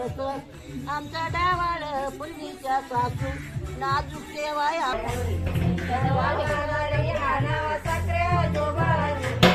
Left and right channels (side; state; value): both; identical; correlation 1.00